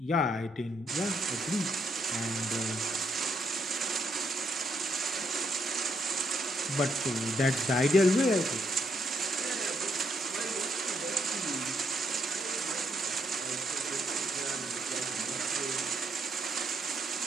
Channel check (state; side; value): normal; both; correlation 0.76